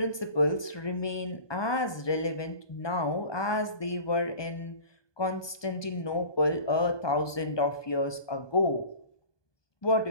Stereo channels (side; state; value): right; late; 1.2 ms